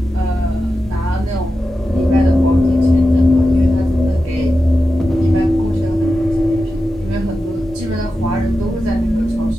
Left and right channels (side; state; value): both; normal; correlation 0.91